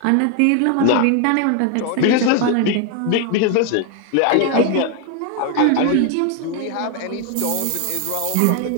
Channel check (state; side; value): different; both; correlation 0.01